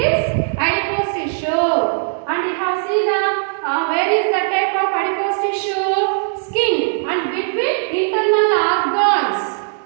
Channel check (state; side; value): silent; left; digital silence